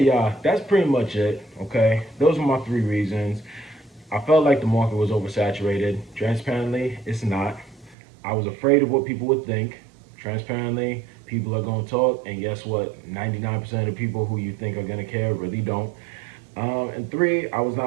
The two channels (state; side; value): drops out; left; at 8.0 s